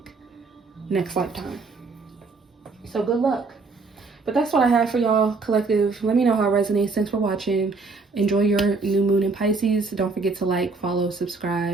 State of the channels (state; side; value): quieter; left; 4.1 dB